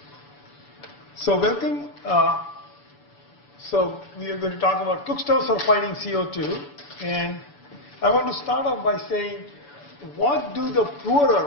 So welcome. So we are going to talk about cookstoves for fighting CO2. And I want to start off by saying, what do the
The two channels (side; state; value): right; late; 7.0 ms